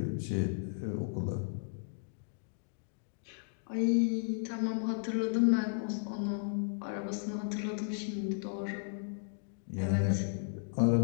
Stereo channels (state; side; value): silent; right; digital silence